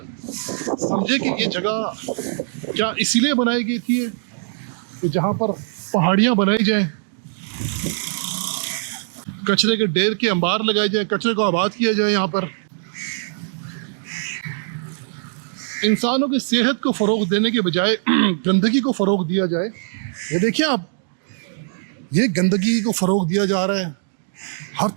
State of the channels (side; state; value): left; silent; digital silence